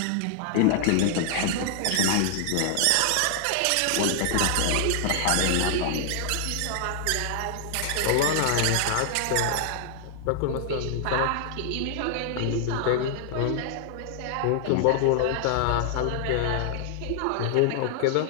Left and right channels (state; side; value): different; both; correlation 0.00